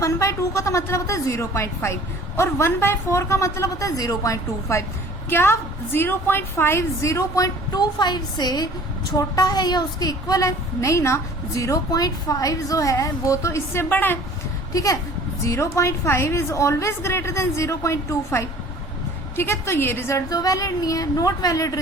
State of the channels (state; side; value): normal; both; correlation 0.49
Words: का तो मतलब होता है 0.5 और 1/4 का मतलब होता है 0.25। क्या 0.5 0.25 से छोटा है या उसके इक्वल है? नहीं ना, 0.5 जो है वो तो इससे बड़ा है। ठीक है, 0.5 इज ऑलवेज ग्रेटर देन 0.25। ठीक है, तो ये रिजल्ट तो वैलिड नहीं है, नॉट वैलिड